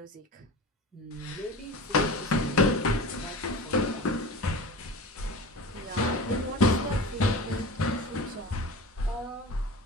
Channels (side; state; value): both; normal; correlation 0.33